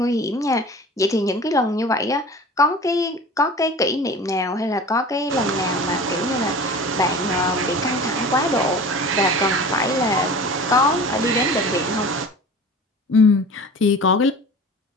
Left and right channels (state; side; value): normal; both; correlation 0.38